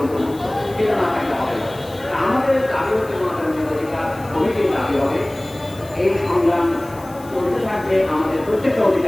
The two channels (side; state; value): left; noise; hiss, 22 dB below the sound